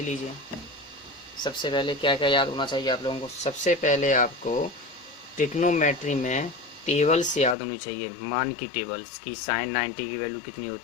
सबसे पहले क्या क्या याद होना चाहिए आप लोगों को। सबसे पहले आपको ट्रिग्नोमेट्री में टेबल्स याद होनी चाहिए, मान की टेबल्स की। साइन 90 की वैल्यू कितनी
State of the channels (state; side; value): drops out; right; at 7.6 s